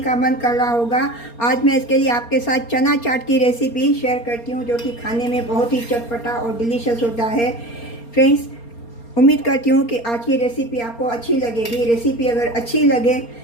मन कर रहा होगा। आज मैं इसके लिए आपके साथ चना चाट की रेसिपी शेयर करती हूँ, जो कि खाने में बहुत ही चटपटा और डिलीशियस होता है। फ्रेंड्स, उम्मीद करती हूँ कि आज की रेसिपी आपको अच्छी लगेगी। रेसिपी अगर अच्छी लगे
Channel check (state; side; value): late; right; 4.3 ms